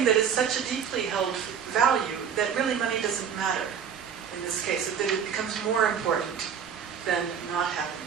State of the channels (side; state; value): left; quieter; 7.5 dB